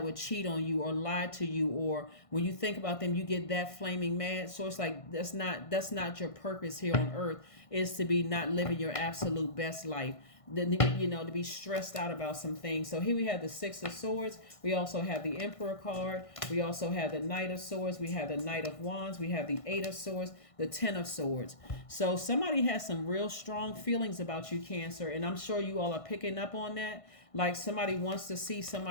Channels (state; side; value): late; right; 1.5 ms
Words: would cheat on you or lie to you, or when you think about them you get that flaming mad. So it's like that's not your purpose here on earth, is to be not living your absolute best life, to be stressed out about some things. So here we have the Six of Swords. We also have the Emperor card. We also have the Knight of Swords. We have the Knight of Wands. We have the Eight of Swords, the Ten of Swords. So somebody has some real strong feelings about you, Cancer, and I'm sure you all are picking up on that. Like somebody wants to see